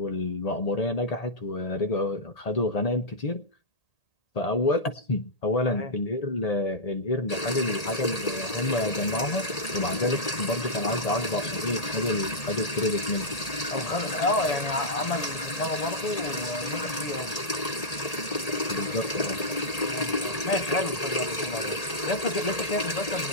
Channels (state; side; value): late; right; 1.8 ms